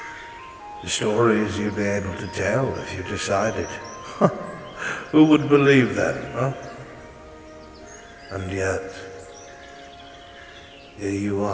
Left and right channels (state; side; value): identical; both; correlation 1.00